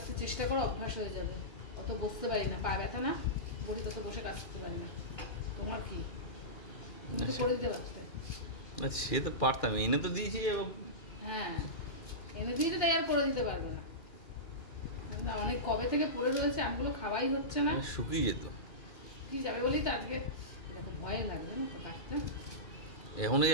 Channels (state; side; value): late; right; 2.4 ms